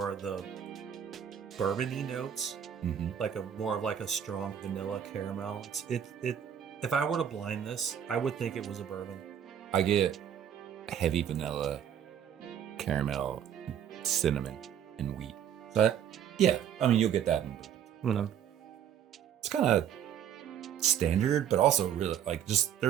of the bourbon-y notes, like more of a strong vanilla caramel. If I were to blind this, I would think it was a bourbon. I get heavy vanilla, caramel, cinnamon, and wheat. But yeah, I mean, you'll get that in bourbon. It's kind of standard, but also really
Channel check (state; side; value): quieter; left; 9.2 dB